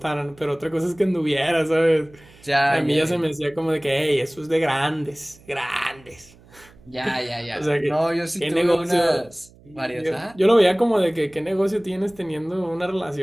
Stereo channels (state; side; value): noise; right; hum, 26 dB below the sound